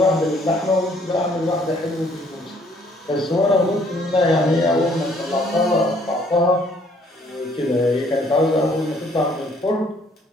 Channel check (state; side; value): normal; both; correlation 0.63